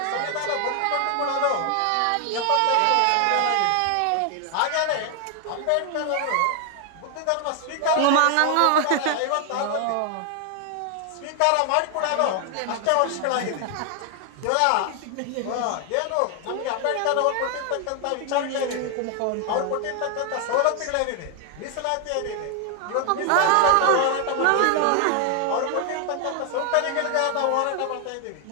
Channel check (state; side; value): different; both; correlation 0.00